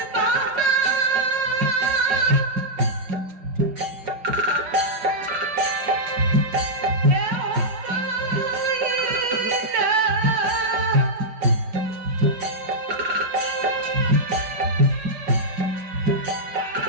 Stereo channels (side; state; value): left; late; 5.5 ms